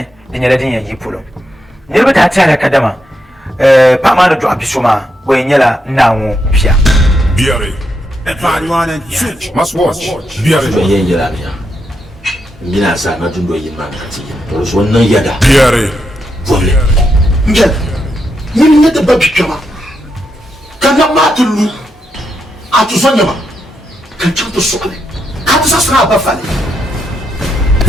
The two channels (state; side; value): normal; both; correlation 0.82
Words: din yala din yayi pulo ne ba ta tare kadama pa ma do abisuma boy nyala nawo bia Biare. Everyone and must watch. Biare. yin yira ne ngina sa na tundo yin man kati to so nan yada Biare. vole ngel yin ne da babi kama kana matulu atu sonya ma kan chanto sokale ka ta sasra ba fale